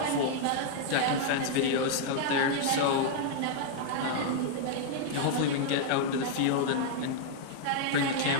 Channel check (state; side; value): different; both; correlation -0.01